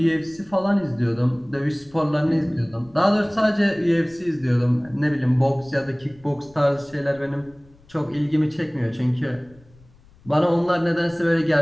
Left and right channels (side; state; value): left; noise; rumble, 28 dB below the sound